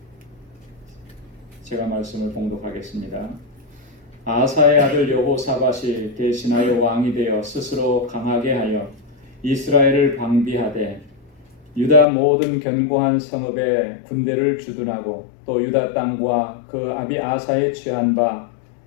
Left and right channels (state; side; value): drops out; right; at 12.1 s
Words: 제가 말씀을 봉독하겠습니다. 아사의 아들 여호사밧이 대신하여 왕이 되어 스스로 강하게 하여 이스라엘을 방비하되 유다 모든 견고한 성읍에 군대를 주둔하고 또 유다 땅과 그 아비 아사의 취한 바